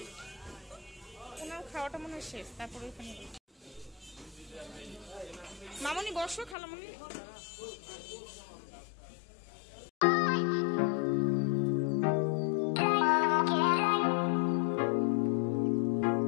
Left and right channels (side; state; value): right; drops out; at 6.6 s